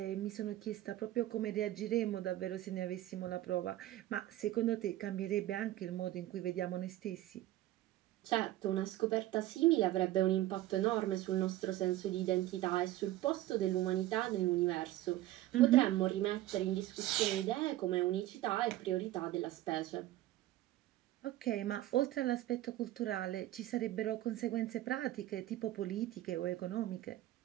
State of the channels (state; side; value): quieter; left; 15.2 dB